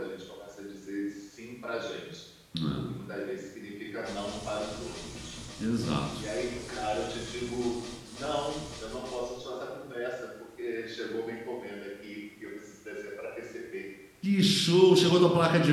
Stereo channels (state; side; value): identical; both; correlation 1.00